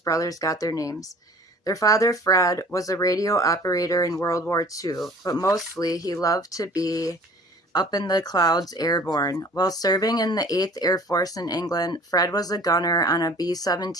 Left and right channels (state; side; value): normal; both; correlation 0.48